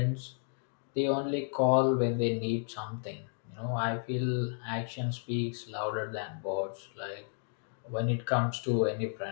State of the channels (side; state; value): right; silent; 56 dB below the other